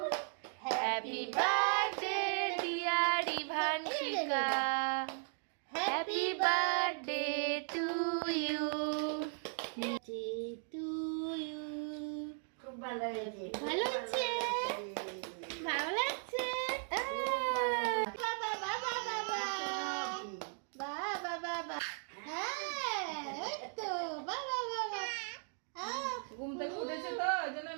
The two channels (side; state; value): left; silent; 53 dB below the other